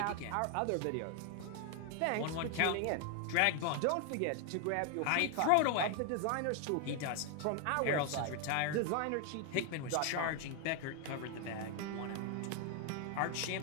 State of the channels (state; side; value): different; both; correlation 0.01